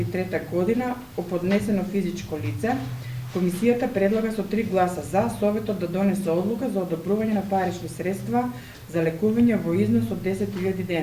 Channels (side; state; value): both; identical; correlation 1.00